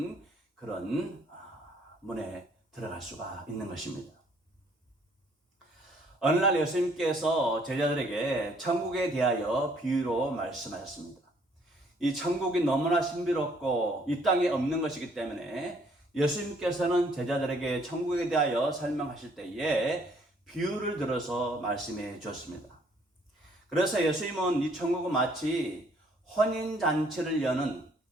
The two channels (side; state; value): both; normal; correlation 0.63